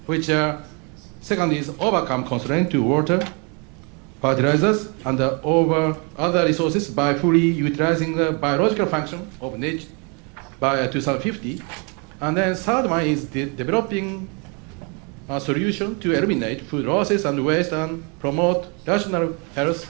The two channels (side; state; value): left; quieter; 33.9 dB